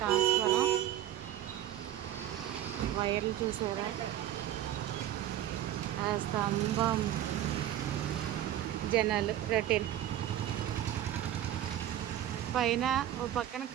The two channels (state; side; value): quieter; left; 12.1 dB